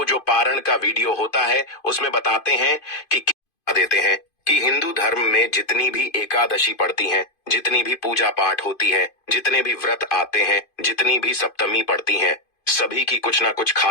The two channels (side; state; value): right; late; 2.5 ms